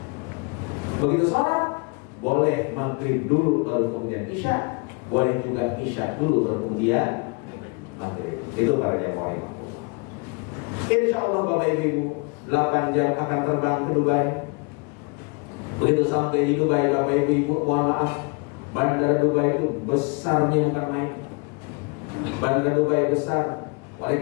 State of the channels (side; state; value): right; quieter; 32.5 dB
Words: Begitu sholat, boleh maghrib dulu baru kemudian Isya, boleh juga Isya dulu baru kemudian maghrib. Itu para jamaah. Insya Allah Bapak Ibu 8 jam akan terbang ke Dubai. Begitu sampai di Dubai, Bapak Ibu, mohon maaf, Bandara Dubai itu besarnya bukan main. Bandara Dubai besar. Oleh